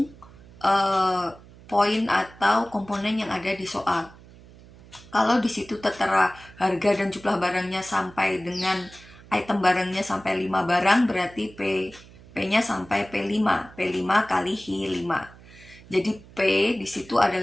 poin atau komponen yang ada di soal. Kalau di situ tertera harga dan jumlah barangnya sampai dengan item barangnya sampai 5 barang, berarti P-nya sampai P5 kali Hi5. Jadi P di situ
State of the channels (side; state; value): right; noise; hum, 22 dB below the sound